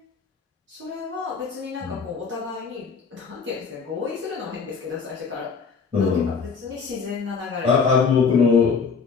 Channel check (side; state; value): right; quieter; 5.4 dB